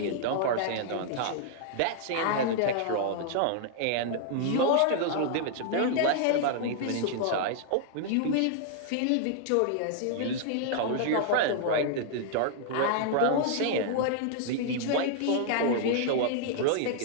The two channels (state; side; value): different; both; correlation -0.01